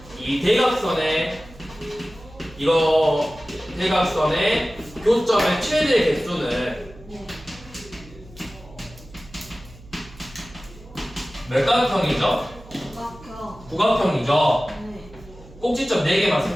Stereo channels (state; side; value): noise; right; hum, 21 dB below the sound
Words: 이 대각선의 대각선의 교점의 최대 개수는 네. 몇각형이죠? 구각형. 구각형이죠. 네. 꼭지점 4개만